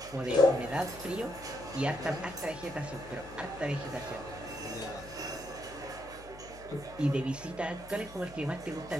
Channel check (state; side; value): noise; left; hum, 17 dB below the sound